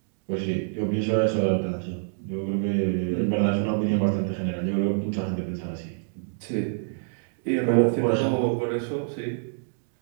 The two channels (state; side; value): silent; left; digital silence